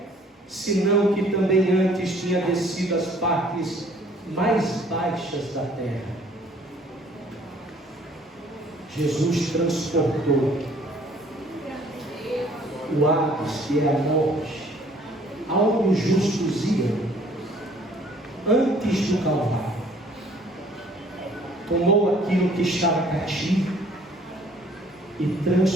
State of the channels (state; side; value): normal; both; correlation 0.57